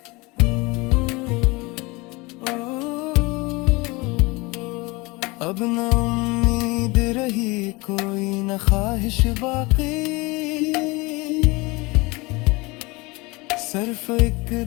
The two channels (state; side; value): quieter; right; 24.7 dB